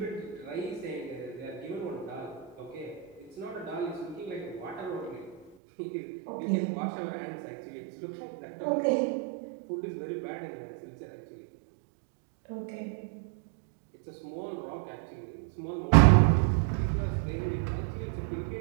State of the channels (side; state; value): left; drops out; at 5.5 s